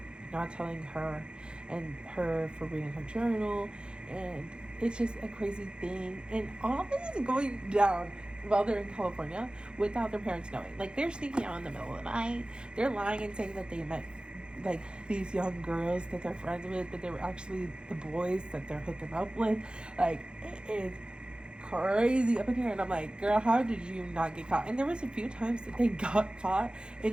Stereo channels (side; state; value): left; late; 0.051 ms